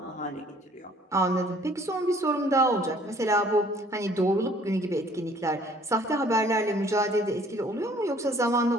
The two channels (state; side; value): normal; both; correlation 0.57